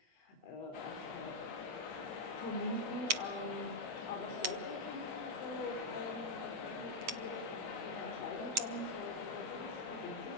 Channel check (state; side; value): late; left; 8.1 ms